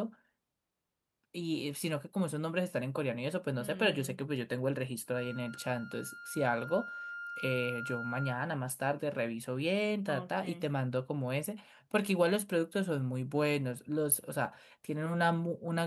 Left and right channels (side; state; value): both; identical; correlation 1.00